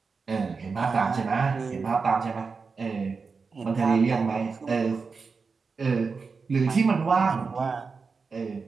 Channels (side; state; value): left; quieter; 4.9 dB